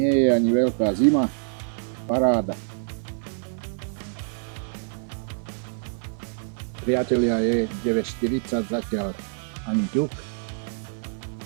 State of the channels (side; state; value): left; silent; 56 dB below the other